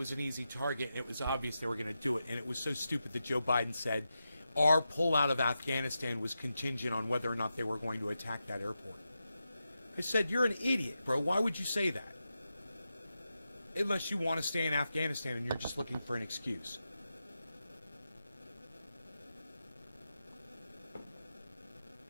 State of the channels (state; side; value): inverted; both; correlation -0.89